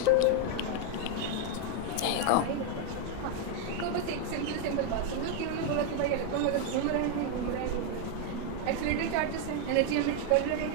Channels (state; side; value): different; both; correlation 0.01